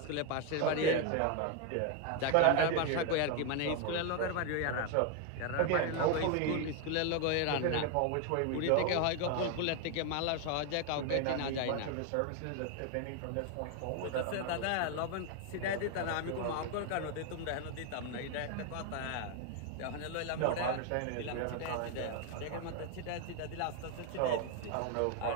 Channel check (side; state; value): both; different; correlation 0.01